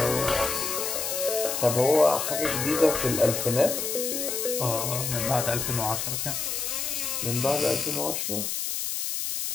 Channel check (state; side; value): noise; left; hiss, 2 dB below the sound